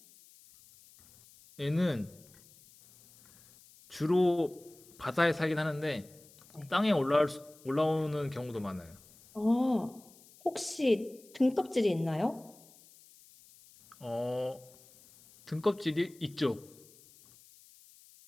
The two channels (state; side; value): noise; left; hiss, 25 dB below the sound